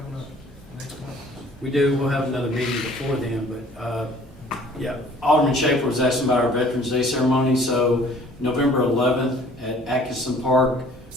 up next month? We do, we'll have another meeting before then, but, yeah, Alderman Schaefer was asking about our Veterans Day ceremony, so November 11th at Atkinson Park,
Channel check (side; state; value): both; normal; correlation 0.53